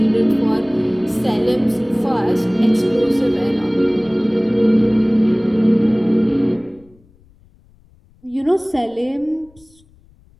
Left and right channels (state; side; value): noise; left; rumble, 30 dB below the sound